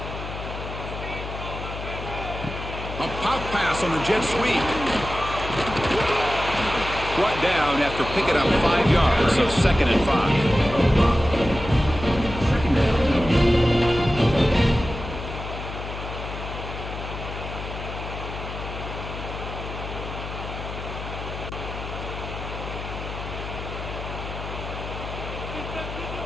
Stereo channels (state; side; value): noise; left; hum, 8 dB below the sound